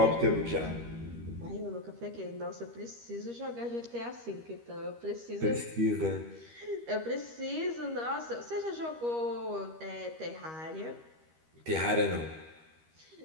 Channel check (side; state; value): left; late; 13 ms